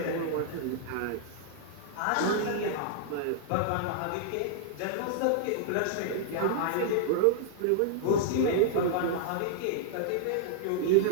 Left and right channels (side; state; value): both; different; correlation -0.01